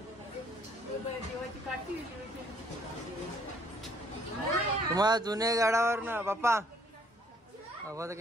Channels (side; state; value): both; normal; correlation 0.63